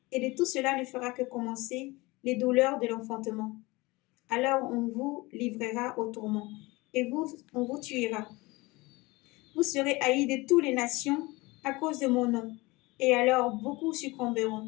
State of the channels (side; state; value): right; quieter; 22.8 dB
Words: Et de tout cela ne fera que commencer les douleurs de l'enfantement. Alors on vous livrera au tourment, et on vous tuera. Vous serez haïs de toutes les nations à cause de mon nom. Et alors beaucoup